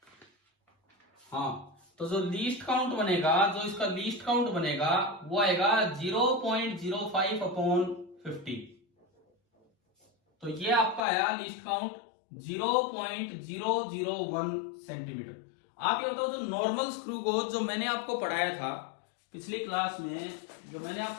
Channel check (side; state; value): right; drops out; at 11.1 s